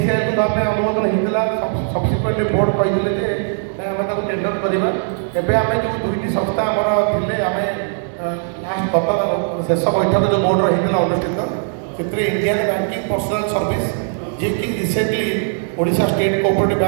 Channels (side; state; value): left; silent; 67 dB below the other